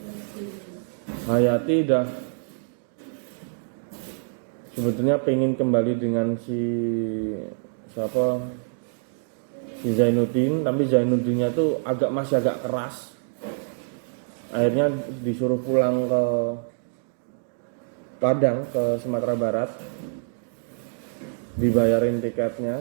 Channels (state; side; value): silent; left; digital silence